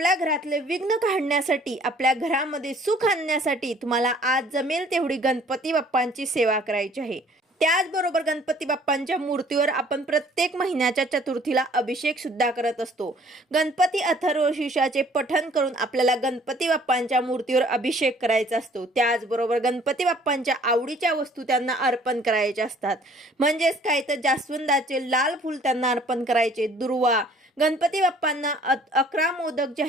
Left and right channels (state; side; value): normal; both; correlation 0.56